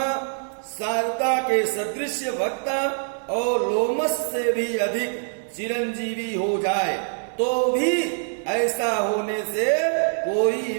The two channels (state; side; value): silent; left; digital silence